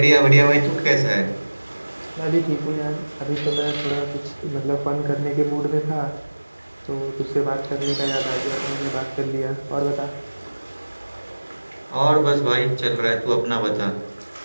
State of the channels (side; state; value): both; inverted; correlation -1.00